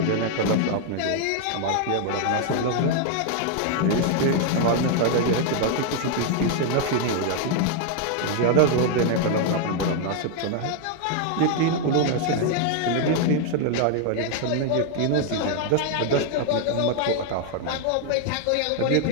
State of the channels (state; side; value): different; both; correlation 0.00